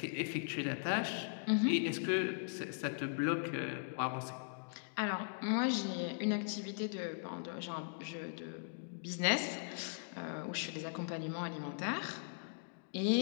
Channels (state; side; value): silent; right; digital silence